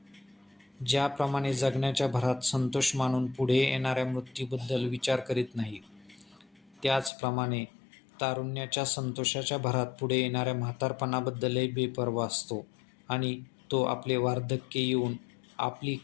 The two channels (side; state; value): right; drops out; at 7.1 s